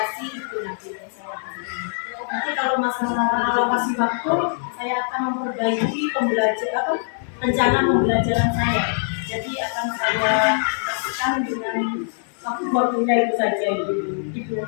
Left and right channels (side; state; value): right; silent; digital silence